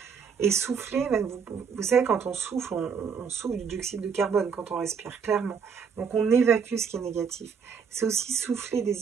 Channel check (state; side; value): quieter; left; 6.3 dB